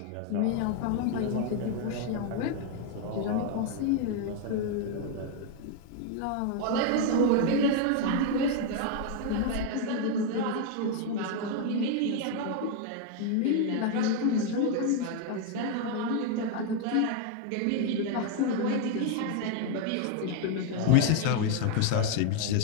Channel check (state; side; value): different; both; correlation 0.01